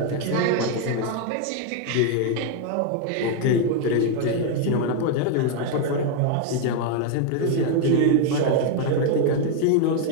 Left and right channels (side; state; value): both; different; correlation 0.01